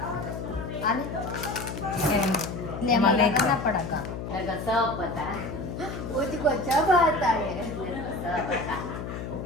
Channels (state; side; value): noise; left; hum, 7 dB below the sound